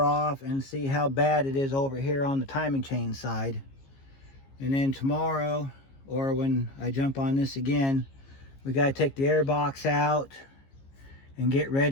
off and see how bad it is over here on the timing chain side. And then tomorrow, or when I jump on this again, we got to take the air box out and get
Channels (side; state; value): right; late; 15 ms